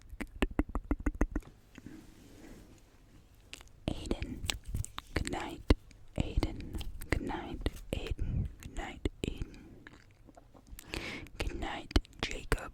Aiden, good night. Aiden, good night. Aiden, good night. Aiden, good night. Jacob,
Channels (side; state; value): both; identical; correlation 1.00